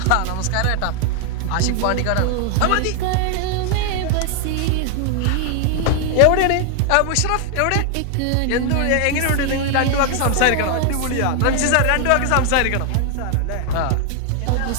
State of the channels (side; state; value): both; different; correlation 0.00